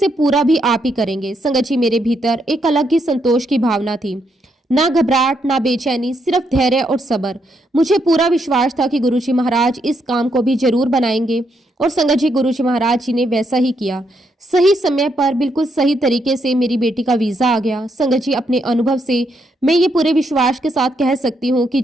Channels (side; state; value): both; normal; correlation 0.77